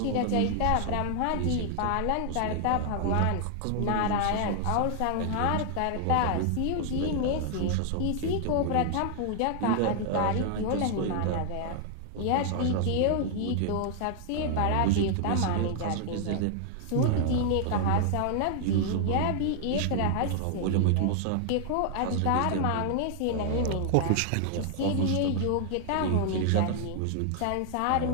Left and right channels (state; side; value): different; both; correlation 0.00